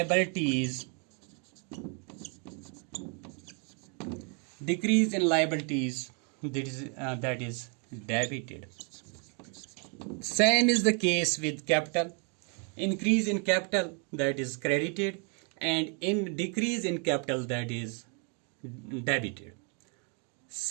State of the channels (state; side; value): quieter; left; 37.5 dB